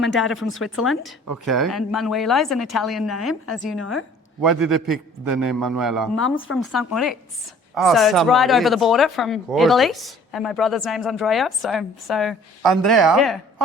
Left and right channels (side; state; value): both; normal; correlation 0.53